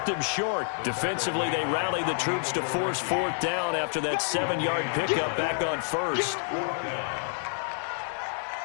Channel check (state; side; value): silent; right; 59 dB below the other